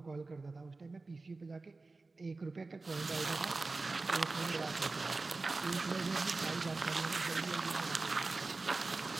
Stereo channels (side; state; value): left; quieter; 3.6 dB